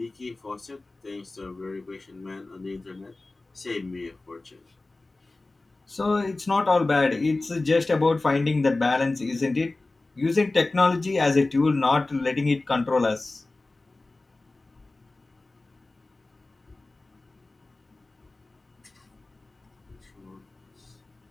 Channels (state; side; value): quieter; right; 3.2 dB